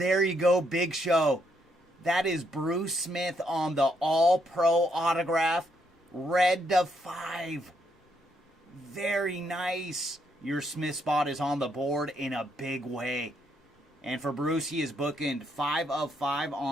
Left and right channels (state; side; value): normal; both; correlation 0.75